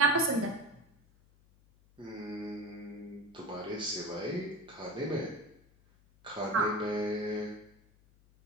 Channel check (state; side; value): noise; left; hum, 29 dB below the sound